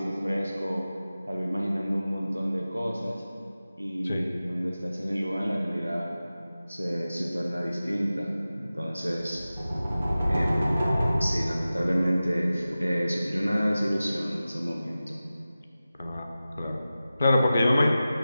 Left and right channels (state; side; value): inverted; both; correlation -0.95